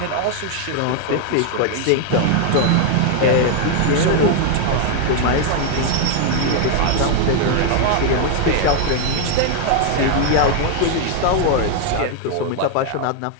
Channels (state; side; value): different; both; correlation 0.00